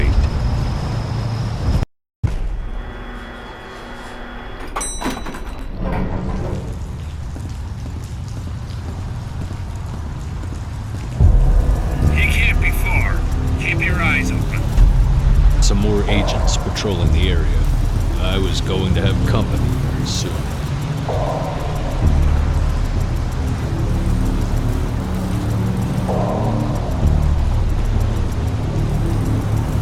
He can't be far. Keep your eyes open. Some more agents patrolling the area. I was going to have company very soon.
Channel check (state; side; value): identical; both; correlation 1.00